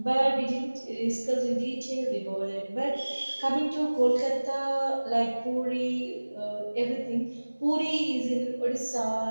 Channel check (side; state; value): both; inverted; correlation -1.00